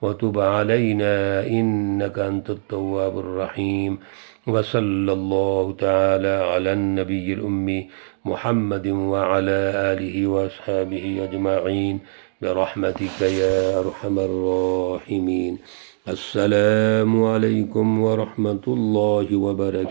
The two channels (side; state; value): left; silent; 65 dB below the other